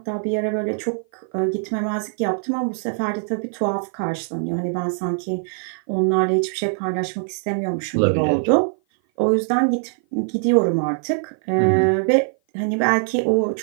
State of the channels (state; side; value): silent; left; 56 dB below the other